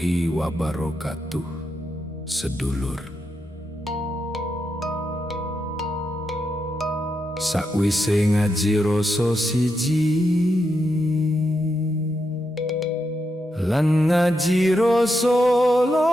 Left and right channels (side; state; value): both; normal; correlation 0.84